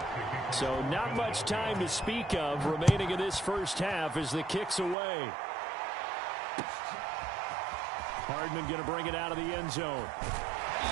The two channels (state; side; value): drops out; left; at 5.0 s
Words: So not much time to speak of remaining in this first half as the kick's away. Hardman going to bring it out of the end zone.